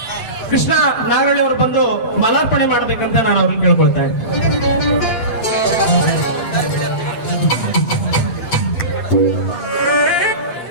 ಕೃಷ್ಣ ನಾಗಳ್ಳಿ ಅವರು ಬಂದು ಮಾಲಾರ್ಪಣೆ ಮಾಡ್ಬೇಕಂತ ನಾನು ಅವ್ರಿಗೆ ಕೇಳ್ಕೊಳ್ತಾ ಇದ್ದೀನಿ.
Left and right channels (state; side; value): late; right; 7.6 ms